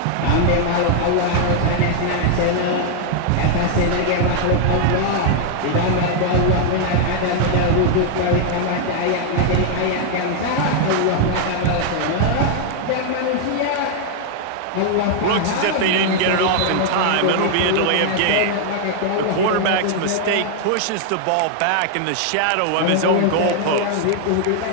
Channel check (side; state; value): both; different; correlation 0.00